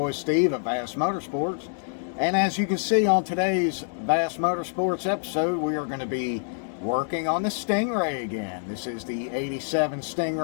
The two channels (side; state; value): right; silent; digital silence